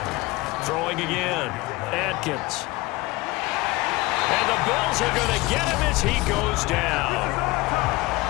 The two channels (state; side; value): quieter; right; 21.4 dB